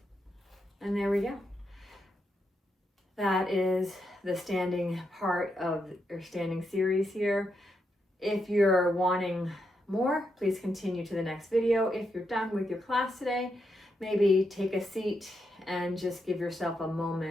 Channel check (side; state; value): both; normal; correlation 0.82